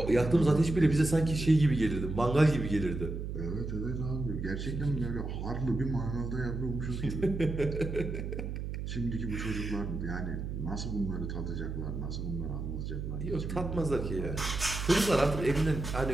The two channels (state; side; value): noise; right; hum, 5 dB below the sound